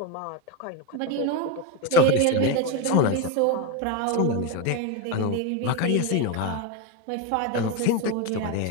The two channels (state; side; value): different; both; correlation 0.03